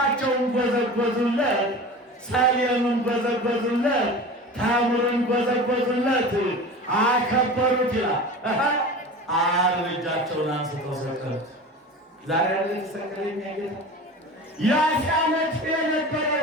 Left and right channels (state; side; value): normal; both; correlation 0.34